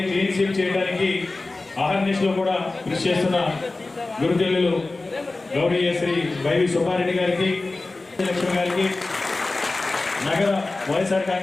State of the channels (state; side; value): quieter; right; 3.3 dB